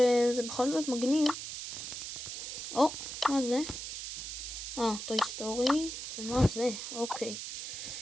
זה בכל זאת מגניב. מה זה? טוי סטורי, ומה זה? אוקיי.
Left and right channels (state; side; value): noise; right; hiss, 7 dB below the sound